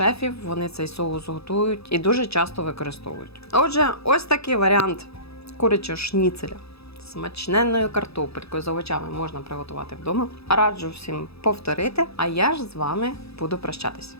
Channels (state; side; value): late; right; 0.78 ms